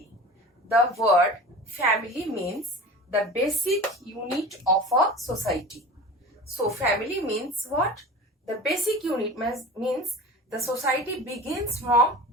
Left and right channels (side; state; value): both; normal; correlation 0.36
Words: The word family means the basic unit of a society. So, family means what? The basic unit means the society begins from